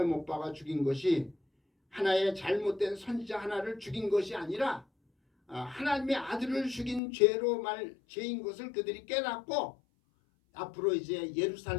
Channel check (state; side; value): drops out; right; at 7.0 s